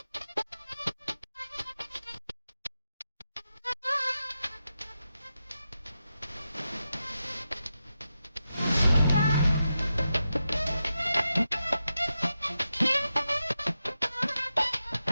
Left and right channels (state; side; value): inverted; both; correlation -0.89